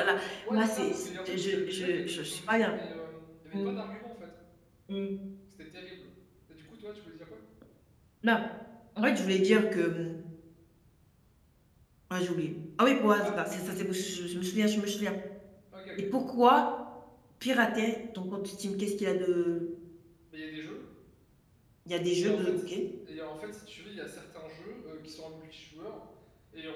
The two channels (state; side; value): identical; both; correlation 1.00